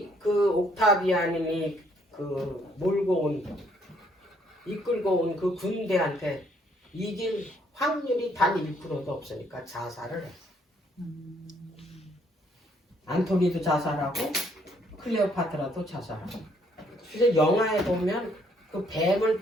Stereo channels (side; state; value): both; normal; correlation 0.67